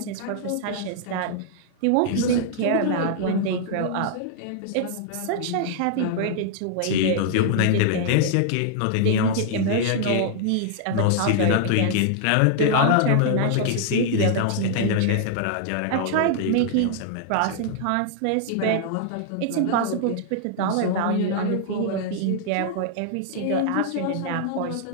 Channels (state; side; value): different; both; correlation -0.01